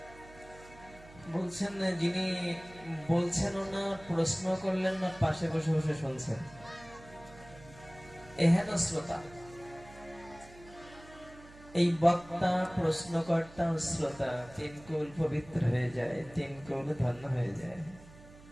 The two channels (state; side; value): noise; right; hum, 20 dB below the sound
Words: বলছেন যিনি বলছেন না, প্রশ্ন করলেন না, পাশে বসে বসে শুনছেন, এহেন শ্রোতা। এই বক্তা, প্রশ্নকর্তা, শ্রোতা তিন কুল পবিত্র হয়ে যায়, তিন কুল ধন্য হয়ে যায়।